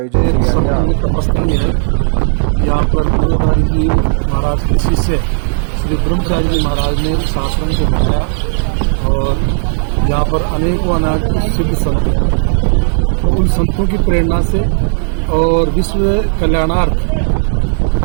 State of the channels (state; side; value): silent; left; digital silence